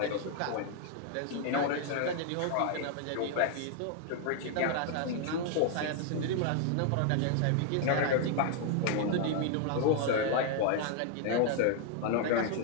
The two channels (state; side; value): different; both; correlation 0.00